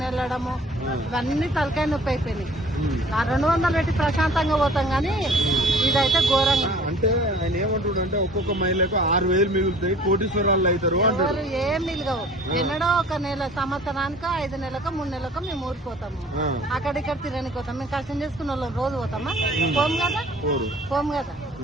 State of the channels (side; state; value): both; normal; correlation 0.49